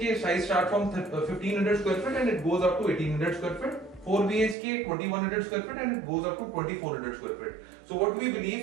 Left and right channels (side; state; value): left; drops out; at 4.5 s